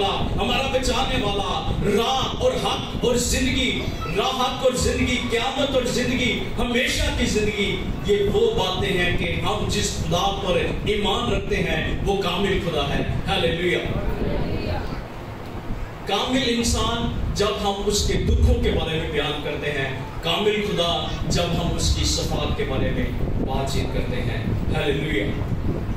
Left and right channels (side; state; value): both; identical; correlation 1.00